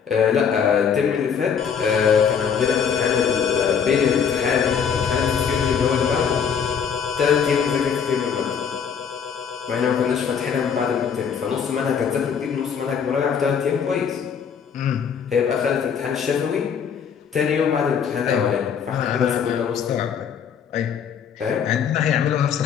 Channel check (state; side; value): quieter; right; 7.1 dB